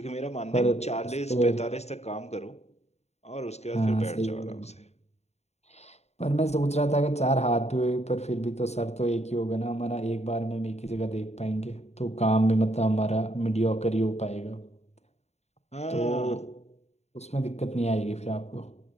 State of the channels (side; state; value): right; late; 0.32 ms